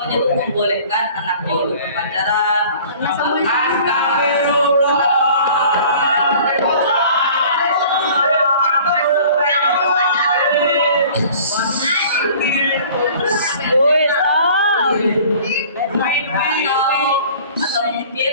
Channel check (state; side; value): inverted; both; correlation -0.48